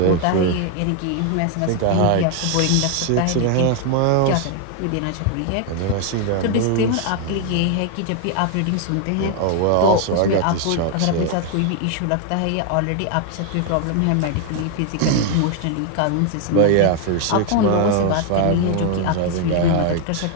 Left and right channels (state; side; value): different; both; correlation 0.01